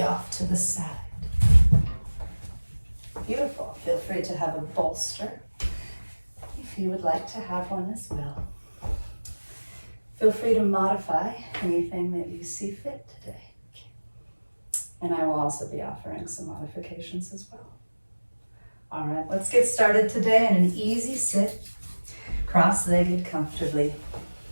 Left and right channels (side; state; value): both; inverted; correlation -1.00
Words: off to the side. Beautiful. Feel free to have a bolster if you would like to have one as well. Feel free to modify anything that you see fit today. And I will also be offering some modifications as well. All right, let's get started today in an easy sit, cross-legged comfortably.